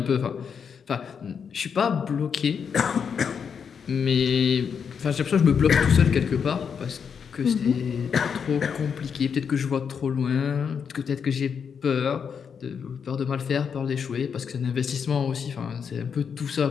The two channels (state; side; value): quieter; right; 6.8 dB